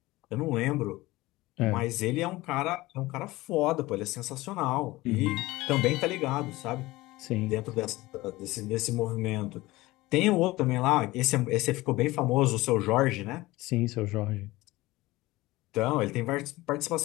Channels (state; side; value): quieter; right; 19.4 dB